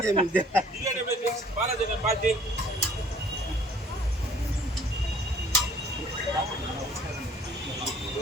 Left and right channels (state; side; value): normal; both; correlation 0.56